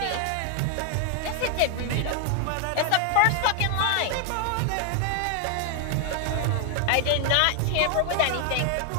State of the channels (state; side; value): different; both; correlation 0.00